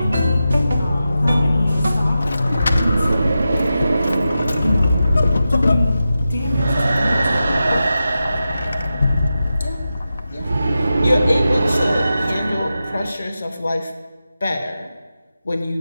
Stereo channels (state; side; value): inverted; both; correlation -0.91